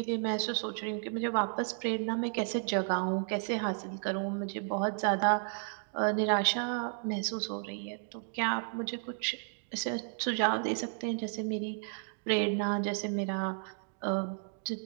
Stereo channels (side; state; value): left; silent; 56 dB below the other